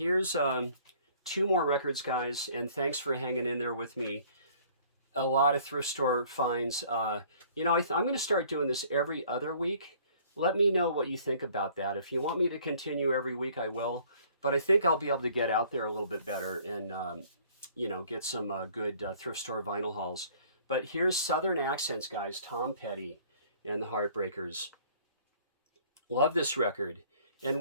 2 more records, guys. And thanks for hanging in there with me. A lot of thrift store finds. You know, I'm going to start doing this every other week. Let me know what you think about that. If you want me to continue every week, I will. But I think I'll be able to get out there a little bit better and, you know, get some good thrift store vinyl hauls. But here's Southern Accents, guys. Tom Petty and the Heartbreakers. Love this record. And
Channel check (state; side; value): inverted; both; correlation -0.55